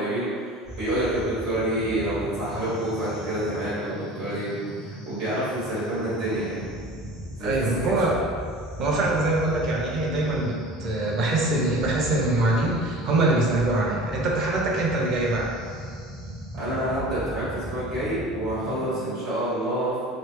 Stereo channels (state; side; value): normal; both; correlation 0.40